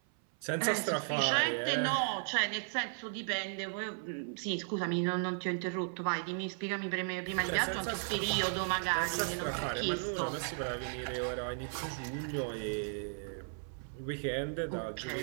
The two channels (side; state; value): left; silent; 54 dB below the other